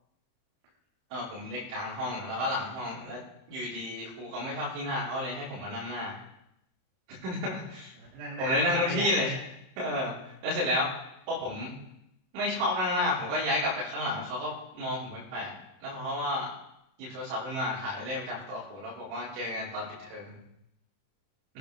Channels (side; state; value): left; late; 31 ms